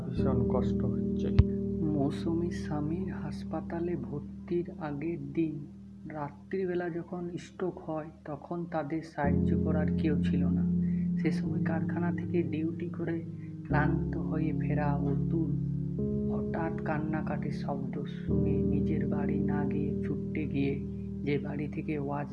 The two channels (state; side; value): identical; both; correlation 1.00